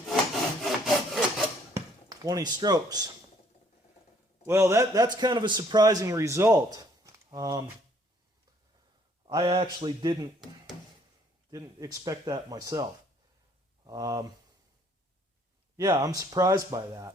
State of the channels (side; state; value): both; normal; correlation 0.63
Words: 20 strokes. Well, that's kind of a surprising result. I actually didn't expect that myself. Yeah, I'm surprised by